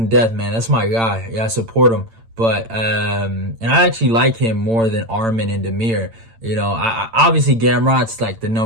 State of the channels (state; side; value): late; left; 8.9 ms